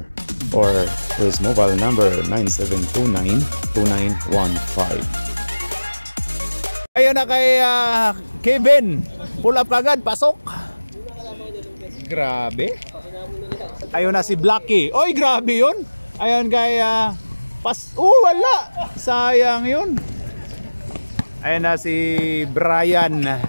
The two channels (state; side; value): inverted; both; correlation -1.00